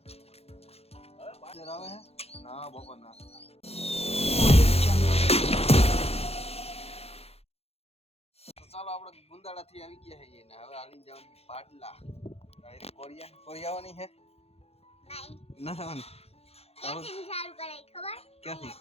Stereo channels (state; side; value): late; right; 0.29 ms